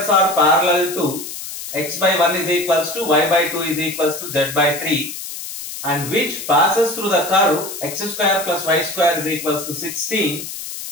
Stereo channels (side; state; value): left; noise; hiss, 9 dB below the sound